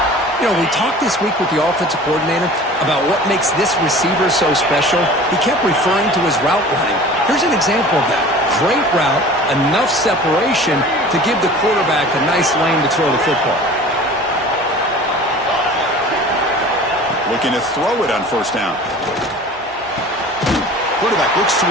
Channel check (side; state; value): both; normal; correlation 0.42